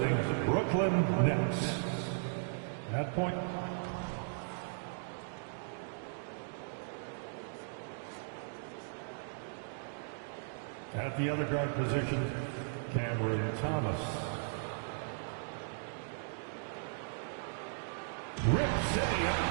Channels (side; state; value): left; silent; digital silence